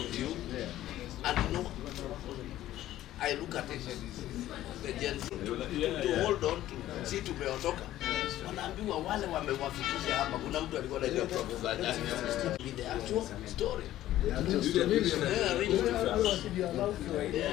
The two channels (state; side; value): quieter; right; 13.8 dB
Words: you, and no, I look at it, the Gen Z, to hold on to, si tumeondoka, wanaambiwa wale wamewafikisha hapa, kuna mtu alikuwa anajua propaganda, with the actual story. Look